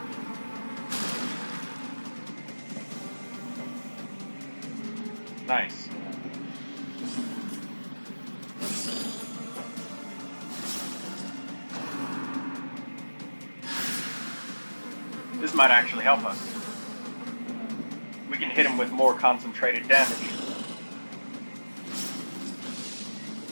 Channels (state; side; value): inverted; both; correlation -1.00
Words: Nice. This might actually help us. We can hit him with more concentrated damage.